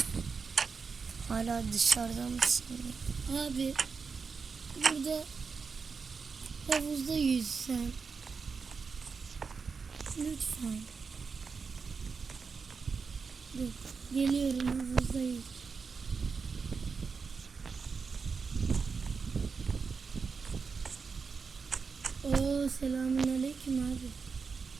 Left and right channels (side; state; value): left; quieter; 5.2 dB